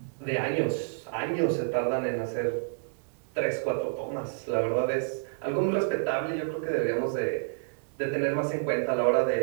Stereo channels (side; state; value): left; silent; digital silence